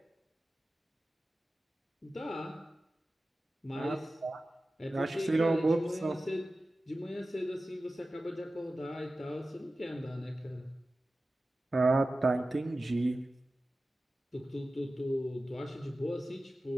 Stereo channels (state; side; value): normal; both; correlation 0.95